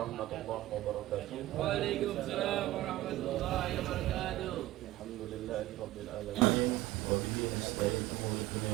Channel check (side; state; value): left; quieter; 16.4 dB